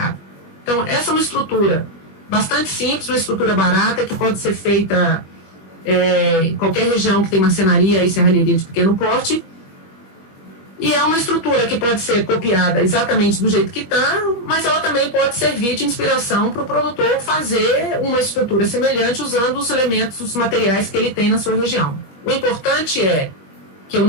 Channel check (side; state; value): right; late; 21 ms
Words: Então, essa é uma estrutura bastante simples, uma estrutura barata, que pode ser feita em qualquer região que tem marcenaria e serralheria de pequeno porte. E é uma estrutura que pode ser copiada exatamente do jeito que está, mas ela também pode servir de inspiração para o produtor fazer uma estrutura semelhante usando os elementos, os materiais que ele tem na sua região. O importante é que eu